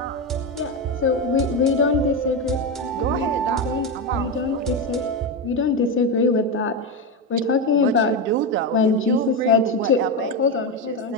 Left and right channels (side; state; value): both; normal; correlation 0.12